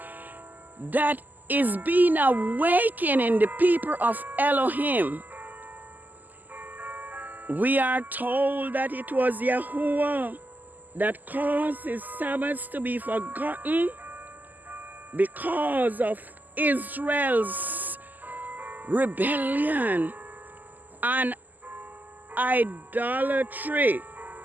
that is being awakened in the people of Elohim. We are told that it was Yahuwah that caused his Sabbaths to be forgotten because of Israel's rebellion and idolatry.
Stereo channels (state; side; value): late; left; 0.084 ms